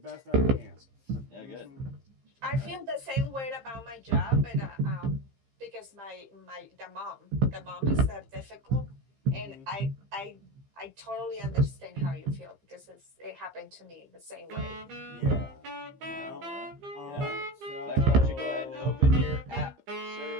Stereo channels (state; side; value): late; left; 15 ms